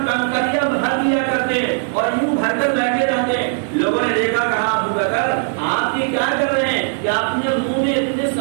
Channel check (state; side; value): silent; left; digital silence